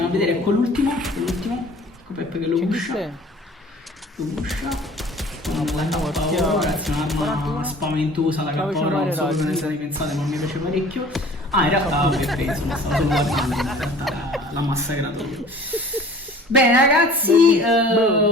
a vedere con l'ultimo, con Pep che lo pusha, ragazzi, un'arma spaventosa la K-Oro, non so come ne state pensate ma mi piace parecchio. In realtà ok, insomma stavo solo guardando, in realtà l'ha massacrato io. Bene ragazzi,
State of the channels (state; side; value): normal; both; correlation 0.47